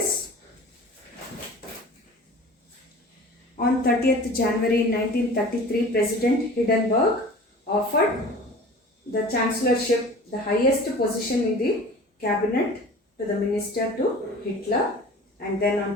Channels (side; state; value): both; normal; correlation 0.41